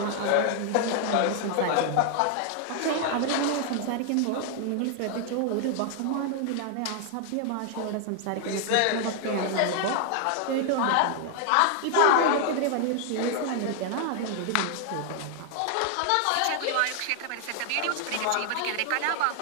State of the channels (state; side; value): different; both; correlation 0.00